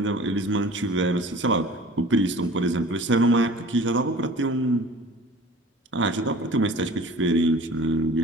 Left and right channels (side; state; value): both; normal; correlation 0.44